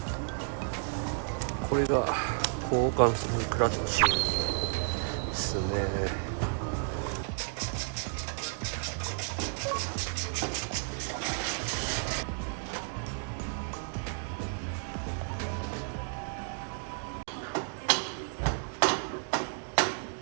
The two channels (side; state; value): left; silent; 56 dB below the other